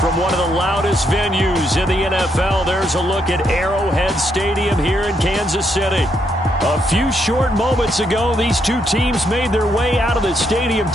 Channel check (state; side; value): normal; both; correlation 0.76